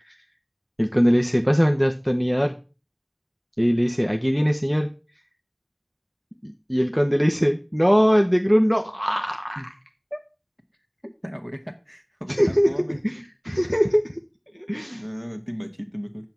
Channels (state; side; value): identical; both; correlation 1.00